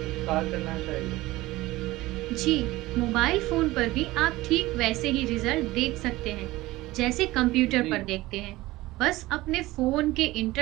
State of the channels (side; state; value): left; quieter; 18.5 dB